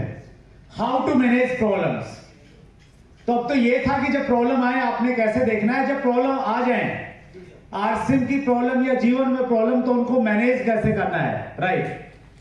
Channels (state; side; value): identical; both; correlation 1.00